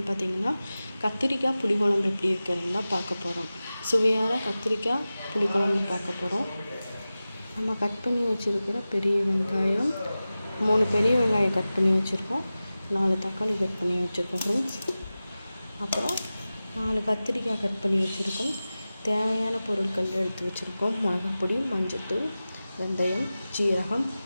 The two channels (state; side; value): inverted; both; correlation -0.96